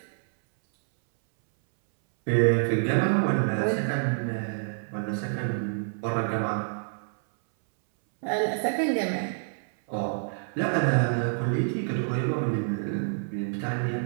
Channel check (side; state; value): left; silent; 60 dB below the other